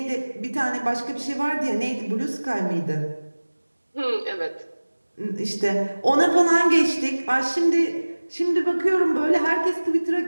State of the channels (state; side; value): inverted; both; correlation -1.00